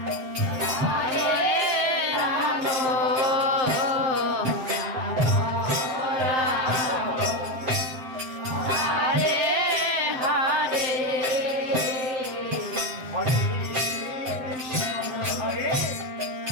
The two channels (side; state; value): left; late; 7.7 ms